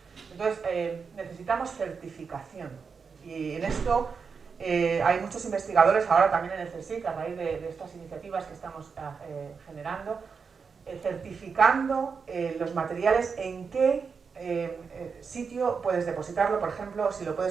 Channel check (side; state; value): left; quieter; 5.5 dB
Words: Entonces, necesitamos certificación. Y en esto hay muchos investigadores, ahora también en el CSIC, a raíz de estas iniciativas que estamos generando, certificando los materiales, en qué sitio puedes depositarlo, por ejemplo, si lo